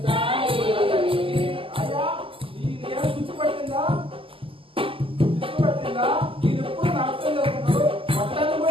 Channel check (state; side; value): late; left; 0.26 ms